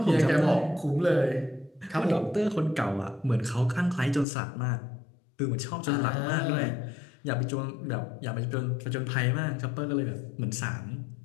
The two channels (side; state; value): right; drops out; at 4.2 s